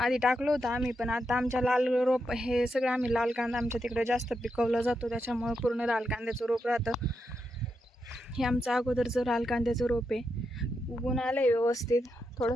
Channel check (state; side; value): normal; both; correlation 0.84